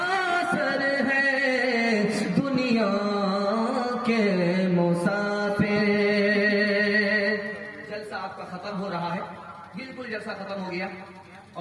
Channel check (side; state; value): both; identical; correlation 1.00